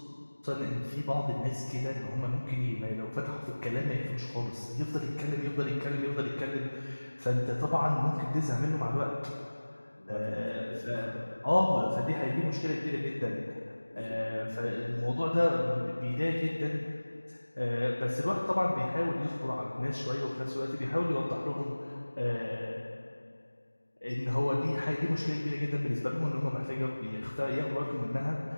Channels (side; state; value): both; inverted; correlation -1.00